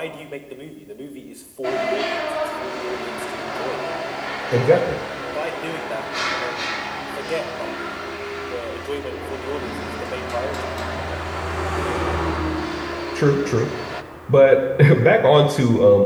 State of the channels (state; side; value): identical; both; correlation 1.00